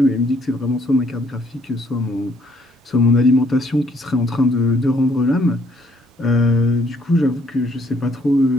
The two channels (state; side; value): normal; both; correlation 0.67